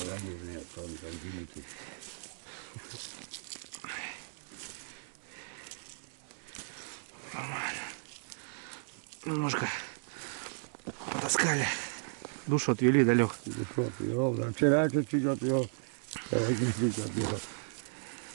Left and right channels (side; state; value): left; silent; digital silence